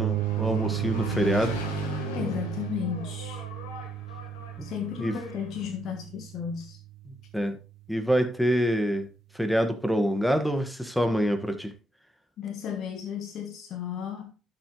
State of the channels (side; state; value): both; normal; correlation 0.73